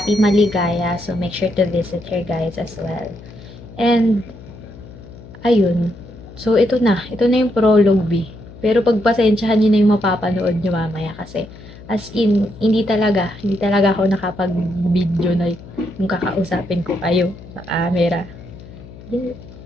Maligaya. So, make sure to visit her guys as well. And ayun. So, ito na yung prologue, Pero pagpasensyahan nyo na yung mapapanood nyo mamaya kasi as in, hindi talaga ako nakapag-video na yung kakausapin ko kayo sa camera.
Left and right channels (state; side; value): noise; left; hum, 18 dB below the sound